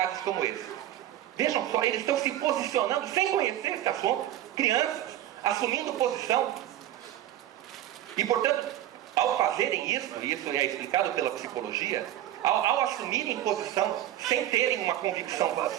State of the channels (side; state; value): left; quieter; 13.0 dB